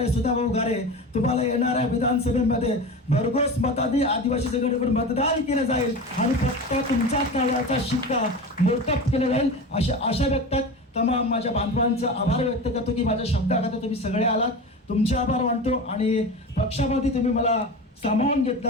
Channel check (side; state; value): both; normal; correlation 0.29